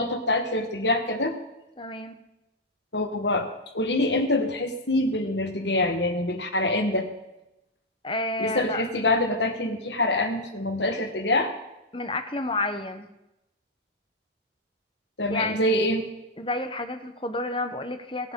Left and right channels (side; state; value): both; normal; correlation -0.02